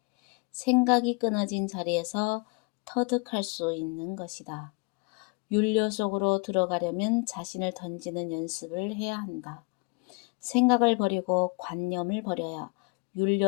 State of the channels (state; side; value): quieter; right; 31.8 dB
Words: 생각이 끊어진 자리에서 터득할 수 있는 것이다. 윤려 속으로 들어가려면 자신을 던지는 연습을 해야 한다. 생각을 버리고 관념을 버려야